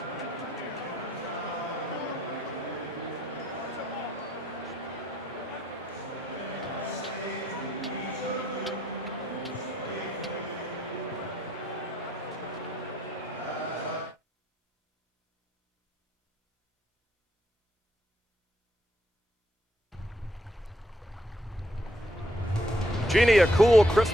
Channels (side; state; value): both; normal; correlation 0.71